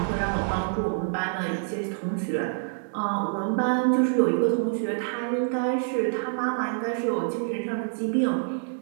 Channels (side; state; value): left; silent; digital silence